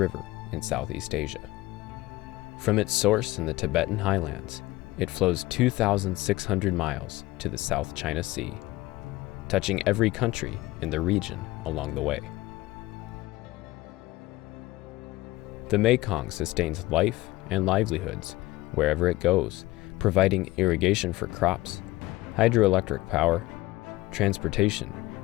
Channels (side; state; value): right; quieter; 18.6 dB